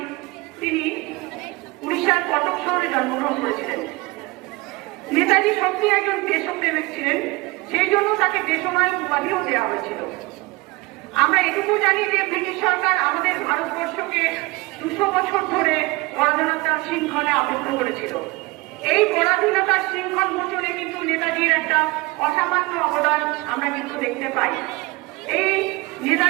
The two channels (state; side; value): quieter; left; 23.6 dB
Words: তিনি উড়িষ্যার কটক শহরে জন্মগ্রহণ করেছিলেন। নেতাজি সত্যি একজন দেশপ্রেমিক ছিলেন, সেই জন্য তাকে দেশনায়ক উপাধিও দেওয়া হয়েছিল। আমরা এটুকু জানি যে ব্রিটিশ সরকার আমাদের ভারতবর্ষকে 200 বছর ধরে পরাধীনতার শৃঙ্খলে আবদ্ধ করেছিল। এই পরাধীনতার শৃঙ্খল মোচনে কিন্তু নেতাজির একটা অসামান্য অবদান আমরা কিন্তু দেখতে পাই। এই